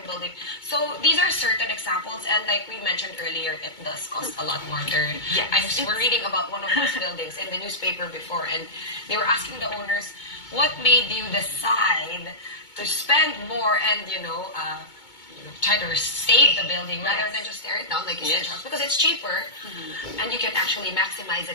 building. So these are certain examples, and like we mentioned earlier, it does cost a lot more to... I was reading about one of those buildings in the newspaper before, and they were asking the owners, what made you decide to spend more and, try to save the building rather than just tear it down like you said, because it's cheaper and you can actually maximize it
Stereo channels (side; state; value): right; late; 2.2 ms